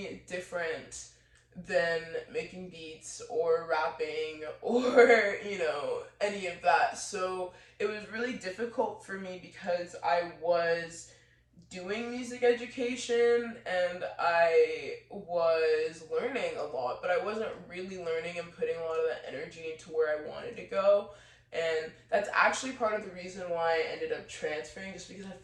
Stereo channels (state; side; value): identical; both; correlation 1.00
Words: different than making beats or rapping or any of that. So it was really difficult for me because I was doing music education and I was learning a lot, but I wasn't really learning and putting a lot of that energy into where I wanted to go. And that's actually part of the reason why I ended up transferring, just because I